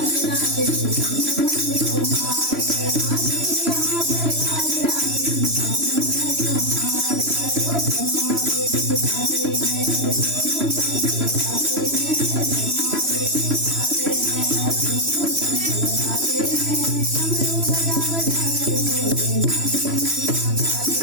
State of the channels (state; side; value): late; left; 3.0 ms